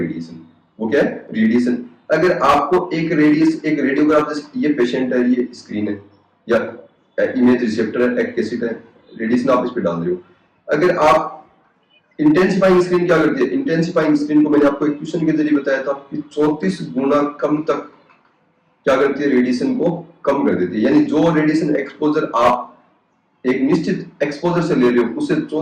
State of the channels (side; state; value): both; identical; correlation 1.00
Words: वो क्या है, रेडिएशन। अगर आपको एक रेडियोग्राफ, जैसे ये पेशेंट है, ये स्क्रीन है या इमेज रिसेप्टर है, एक कैसेट है, रेडिएशन आप इस पे डाल रहे हो। अगर आप इंटेंसिफाइंग स्क्रीन क्या करती है, इंटेंसिफाइंग स्क्रीन को मैंने आपको एक क्वेश्चन के जरिए बताया था कि 34 गुना कम तक क्या करती है, रेडिएशन को कम कर देती है। यानी जो रेडिएशन एक्सपोजर आप एक निश्चित एक्सपोजर से ले रहे हो उससे